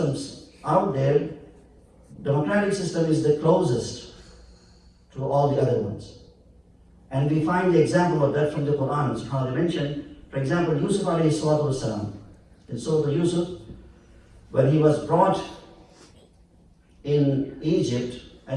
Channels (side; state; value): both; identical; correlation 1.00